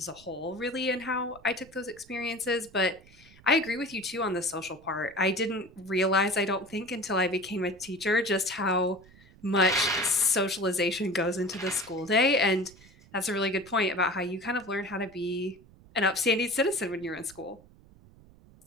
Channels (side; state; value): right; noise; rumble, 25 dB below the sound